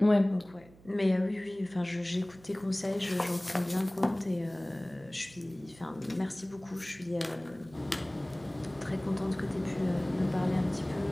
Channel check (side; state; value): right; noise; hum, 24 dB below the sound